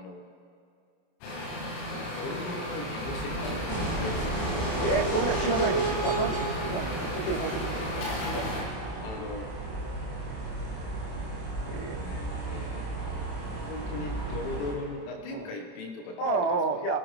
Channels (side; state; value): right; late; 27 ms